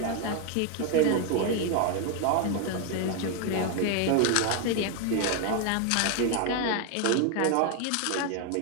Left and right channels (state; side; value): different; both; correlation 0.01